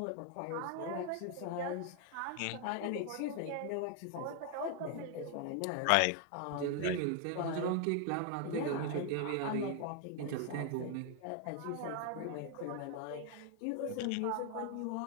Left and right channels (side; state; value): both; different; correlation 0.00